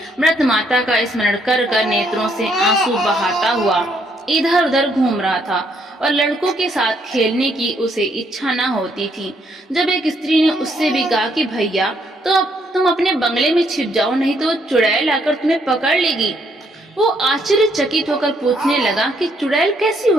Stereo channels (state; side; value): normal; both; correlation 0.71